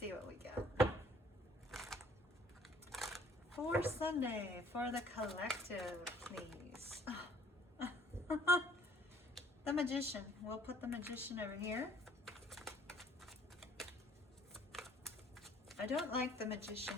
what we get for Sunday for the collective, please. The Magician. We'll put the Magician over here. I don't like the Magician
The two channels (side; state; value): both; normal; correlation 0.58